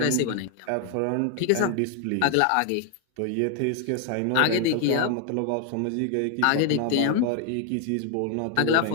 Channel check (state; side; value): different; both; correlation 0.00